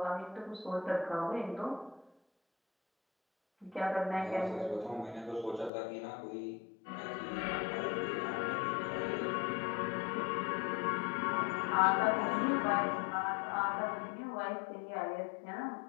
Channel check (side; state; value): right; drops out; at 5.7 s